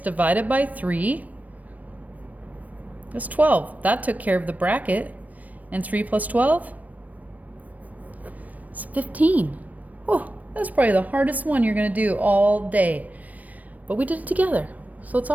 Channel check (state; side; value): late; left; 0.074 ms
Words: divided by 3 is 12. That took care of the bracket. And 3 plus 12 is 15. Oh, that's probably the hardest one you're going to do all day. But we did it together, so it's